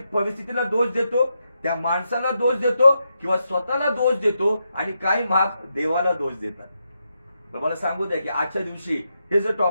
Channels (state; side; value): inverted; both; correlation -0.84